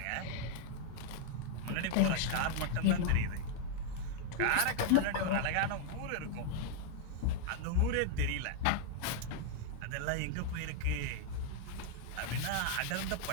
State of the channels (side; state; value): both; different; correlation 0.00